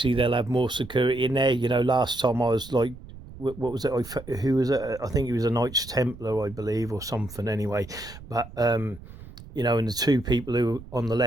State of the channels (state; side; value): noise; right; rumble, 17 dB below the sound